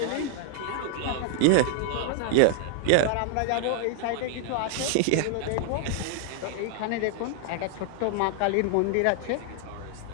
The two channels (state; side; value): different; both; correlation 0.00